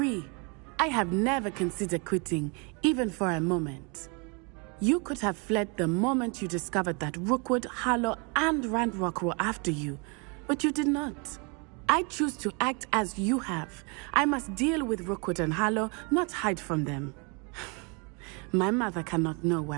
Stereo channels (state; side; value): quieter; left; 32.9 dB